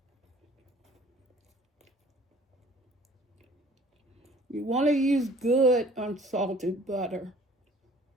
You want to use good unsalted butter.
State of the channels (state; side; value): normal; both; correlation 0.53